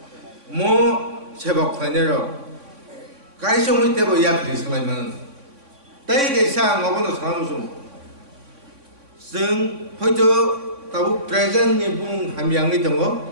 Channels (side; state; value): left; late; 3.6 ms